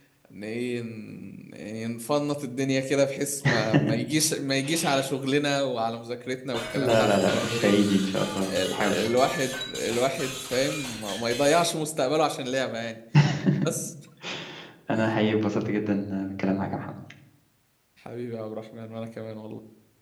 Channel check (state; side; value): identical; both; correlation 1.00